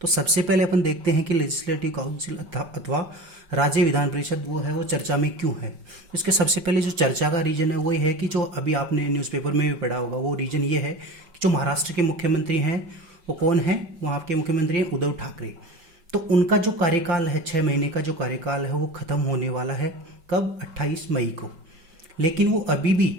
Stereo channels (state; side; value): late; left; 5.8 ms